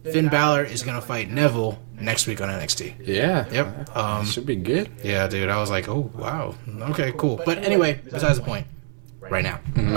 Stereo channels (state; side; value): silent; left; digital silence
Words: Finn Balor is gonna fight Neville next week on NXT. Yeah. Yep. Should be good. Yeah, dude. I was like, oh wow. Okay, cool. But anyway, besides the point. Right now,